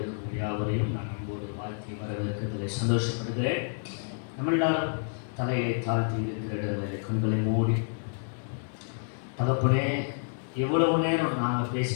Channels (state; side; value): silent; right; digital silence